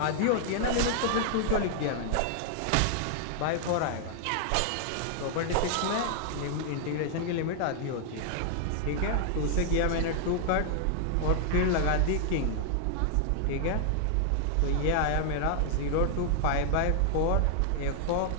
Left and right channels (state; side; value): different; both; correlation 0.00